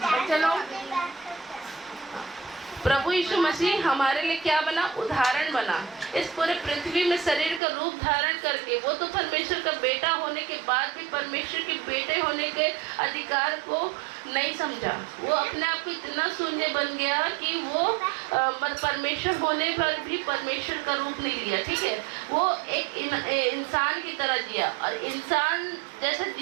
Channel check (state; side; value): drops out; left; at 7.6 s